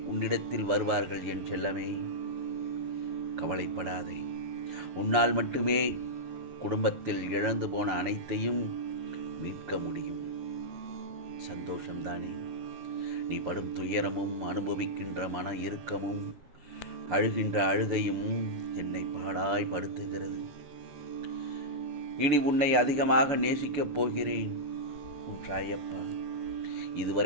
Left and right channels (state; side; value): late; left; 6.9 ms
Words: உன்னிடத்தில் வருவார்கள் என் செல்லமே, கவலைப்படாதே. உன்னால் மட்டுமே குடும்பத்தில் இழந்து போன அனைத்தையும் மீட்க முடியும். சந்தோஷம்தானே? நீ படும் துயரமும் அனுபவிக்கின்ற மன இறுக்கமும் அழுகின்ற அழுகையும் என்னை பாடாய் படுத்துகிறது. இனி உன்னை அதிகமாக நேசிக்கப் போகிறேன் உன் சாயப்பா.